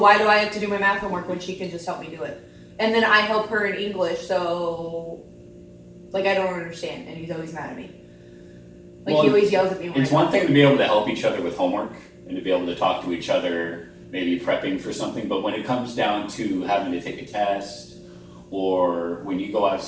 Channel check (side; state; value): both; identical; correlation 1.00